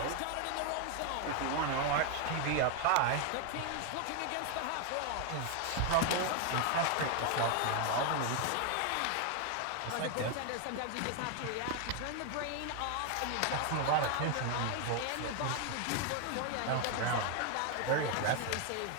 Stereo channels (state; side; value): different; both; correlation 0.01